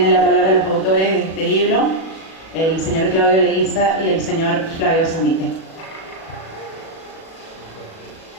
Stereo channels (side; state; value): right; late; 37 ms